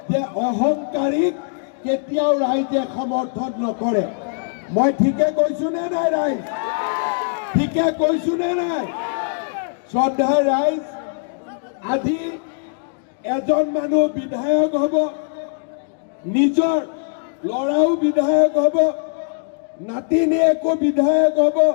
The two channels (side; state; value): right; silent; digital silence